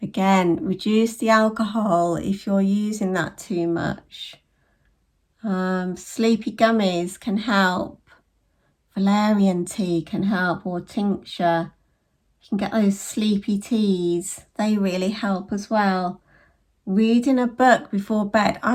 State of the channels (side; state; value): both; identical; correlation 1.00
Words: Again, reduce the alcohol if you're using that too much. Sleepy gummies can help. Valerian tea can help, or tincture. You can get those sleepy teas. They really help as well. Reading a book before bed.